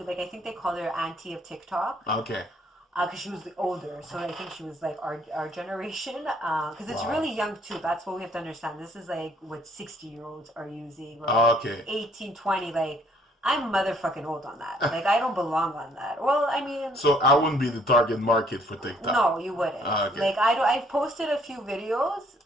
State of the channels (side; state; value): both; normal; correlation 0.63